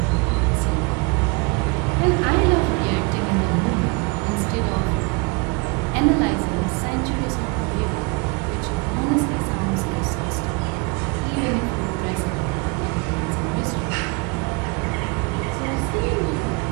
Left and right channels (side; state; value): left; quieter; 29.2 dB